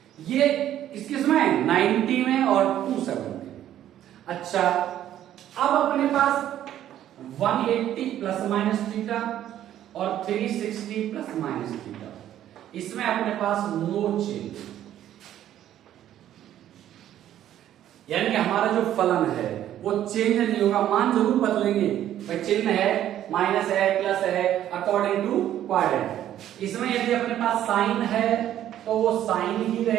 ये किस किस में? 90 में और 270। अच्छा, अब अपने पास 180 प्लस माइनस थीटा और 360 प्लस माइनस थीटा, इसमें अपने पास नो चेंज, यानी कि हमारा जो फलन है वो चेंज नहीं होगा। मान जरूर बदलेंगे, भाई चिन्ह है, माइनस है, प्लस है, अकॉर्डिंग टू क्वाड्रेंट। इसमें यदि अपने पास साइन है तो वो साइन ही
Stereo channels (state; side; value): quieter; left; 11.7 dB